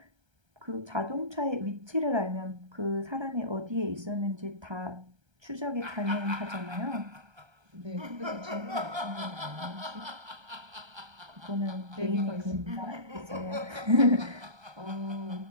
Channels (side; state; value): left; late; 1.3 ms